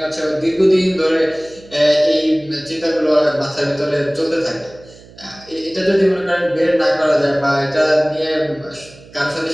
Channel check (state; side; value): noise; right; hum, 23 dB below the sound